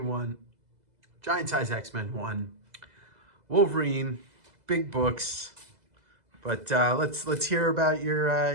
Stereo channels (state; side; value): late; left; 2.0 ms